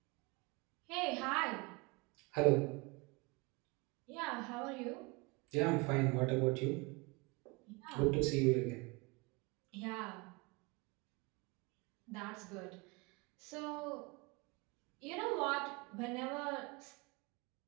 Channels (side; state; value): left; quieter; 26.9 dB